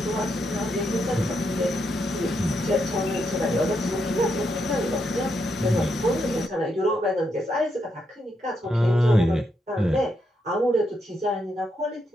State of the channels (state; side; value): normal; both; correlation 0.80